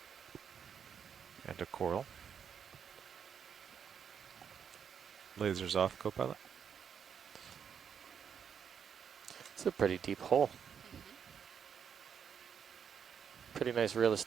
And a coral. Lasers off, Copilot. It's a pretty deep hole. Pretty nice real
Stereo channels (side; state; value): left; quieter; 7.5 dB